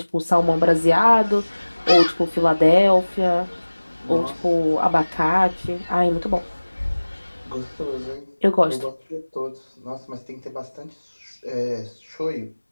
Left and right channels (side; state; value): both; inverted; correlation -1.00